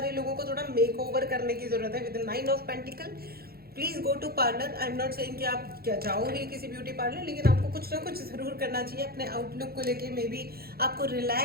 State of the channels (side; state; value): left; late; 0.45 ms